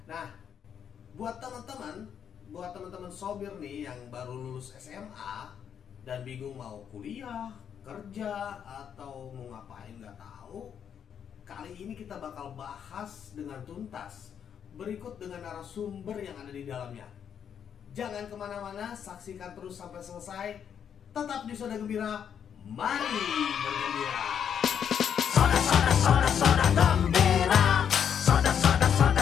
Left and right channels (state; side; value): quieter; right; 8.2 dB